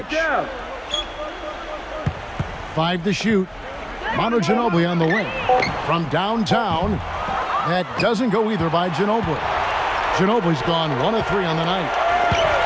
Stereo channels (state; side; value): identical; both; correlation 1.00